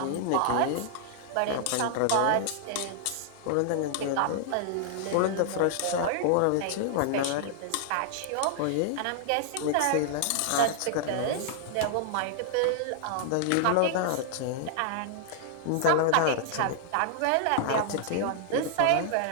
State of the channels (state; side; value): different; both; correlation -0.01